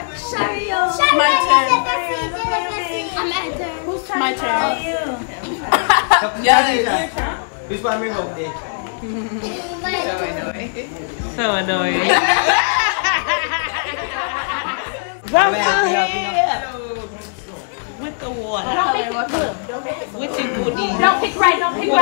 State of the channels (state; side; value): silent; right; digital silence